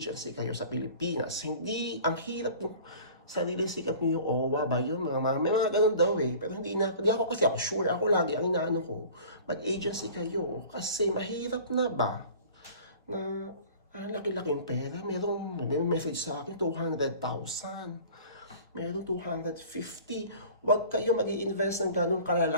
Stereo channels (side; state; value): both; inverted; correlation -0.45